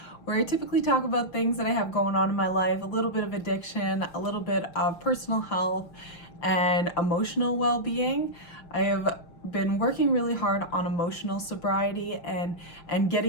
where I typically talk about things that I have going on in my life, a little bit of addiction, a little bit of personal health, and emotional well-being. I have been working really hard on emotional sobriety and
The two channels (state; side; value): late; right; 5.9 ms